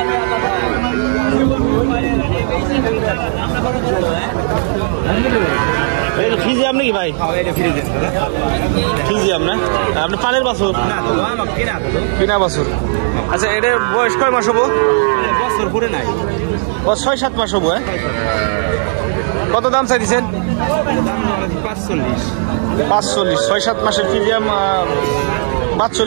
ফিজিয়াম নাকি ভাই? ফিজিয়াম না? আপনি পালের বাছুর? কিনা বাছুর। আচ্ছা, এটার বয়স কয় মাস হবো? বছর পুরে নাই, 6-7 মাস হবো। হ্যাঁ, কত দাম চাইছেন? 45। 6-7 মাসের ফিজিয়াম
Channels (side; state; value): left; silent; digital silence